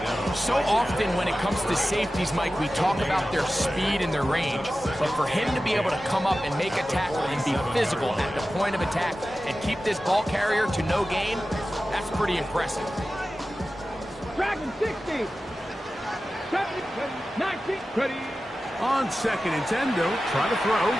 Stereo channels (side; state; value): both; normal; correlation 0.94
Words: So often when it comes to safeties, Mike, we talk about their speed and their range. But for him to be able to come up and make a tackle and be physical at the point of attack and keep this ball carrier to no gain, that's pretty impressive. Dragon 60. 70, 19, ready. On 2nd and 10, they'll try to throw.